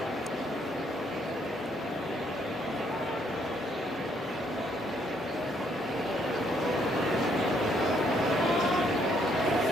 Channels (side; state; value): both; normal; correlation 0.70